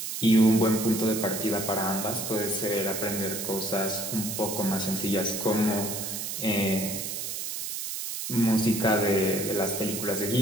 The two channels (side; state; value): right; noise; hiss, 5 dB below the sound